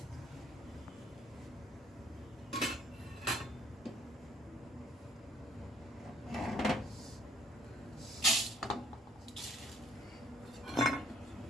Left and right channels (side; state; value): both; normal; correlation 0.62